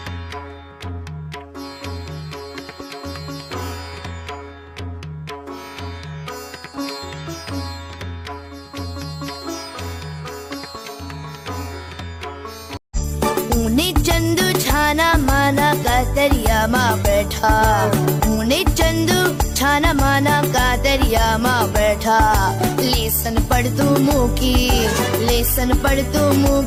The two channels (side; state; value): both; identical; correlation 1.00